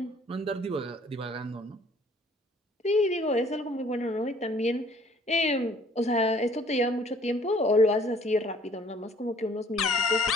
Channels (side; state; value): both; normal; correlation 0.57